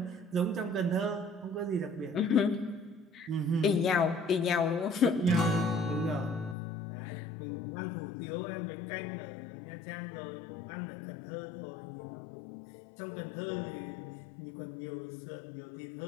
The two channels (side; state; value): right; drops out; at 6.6 s